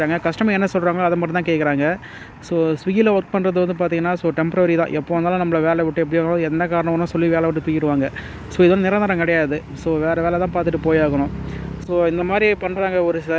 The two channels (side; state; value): both; identical; correlation 1.00